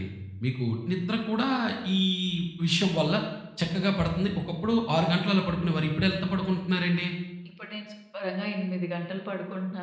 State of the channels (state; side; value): identical; both; correlation 1.00